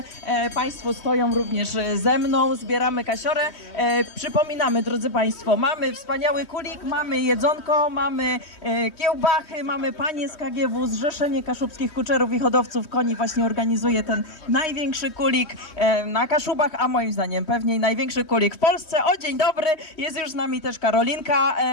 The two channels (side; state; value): right; late; 3.2 ms